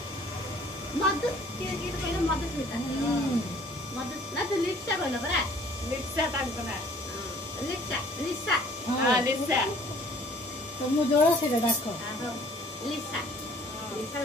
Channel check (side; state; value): both; normal; correlation 0.55